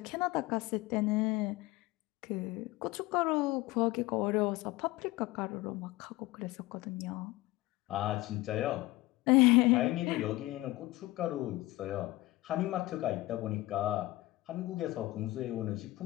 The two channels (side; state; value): right; quieter; 19.1 dB